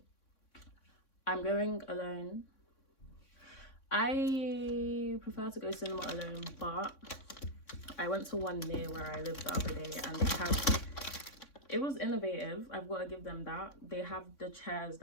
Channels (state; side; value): late; right; 3.6 ms